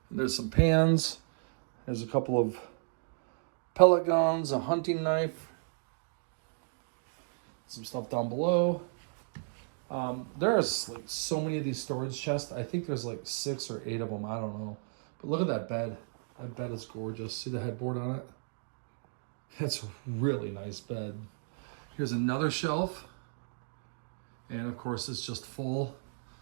There's some pans. There's a couple of pellet guns, a hunting knife, some stuff down below. There's like so many of these storage chests. I think there's like 6 or 8 of them. I don't know. But look at that bed. That bed is gorgeous. See the headboard on it? That's a really nice bed. Here's another shelf. And of course, it's just full.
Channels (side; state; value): left; silent; digital silence